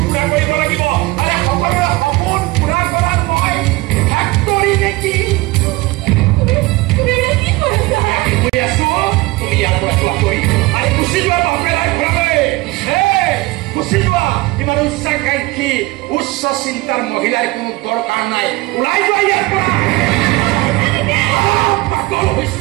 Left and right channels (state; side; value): quieter; left; 21.2 dB